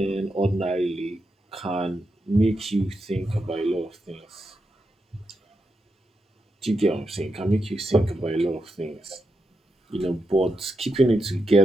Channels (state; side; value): normal; both; correlation 0.86